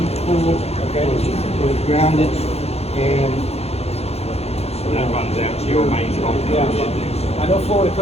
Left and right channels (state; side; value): late; right; 0.30 ms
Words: pool. Okay. It's grounded, and That runs out to your main pump. Yeah. I know Florida